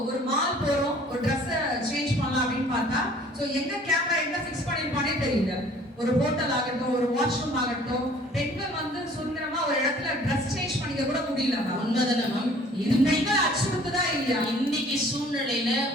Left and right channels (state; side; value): normal; both; correlation 0.53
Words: ஒரு மால் போறோம், ஒரு ட்ரெஸ்ஸை சேஞ்ச் பண்ணலாம் அப்படின்னு பார்த்தா ஸோ எங்க கேமரா எங்க ஃபிக்ஸ் பண்ணிருப்பானே தெரியல. ஒரு ஹோட்டல் ஆகட்டும், ஒரு வாஷ்ரூம் ஆகட்டும், பெண்கள் வந்து சுதந்திரமா ஒரு இடத்துல ட்ரெஸ் சேஞ்ச் பண்ணிக்க கூட முடியல. உண்மைதானே? இது பெண்கள் அச்சுறுத்துதான் இல்லையா? இன்னைக்கு சூழ்நிலையில